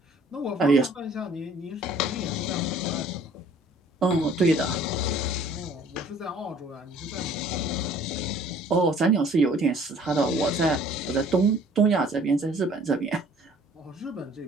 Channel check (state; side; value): normal; both; correlation 0.54